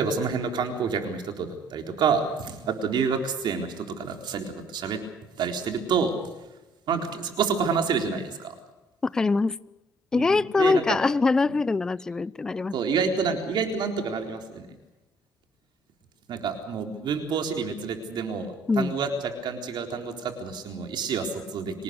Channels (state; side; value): normal; both; correlation 0.62